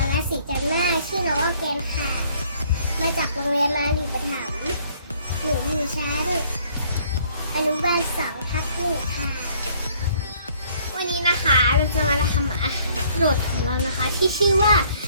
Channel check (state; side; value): inverted; both; correlation -0.61